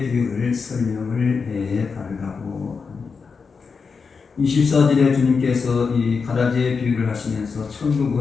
비유를 설명을 해 달라고 합니다. 24절에 주님께서 이 가라지의 비유를 하시면서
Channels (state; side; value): quieter; right; 5.2 dB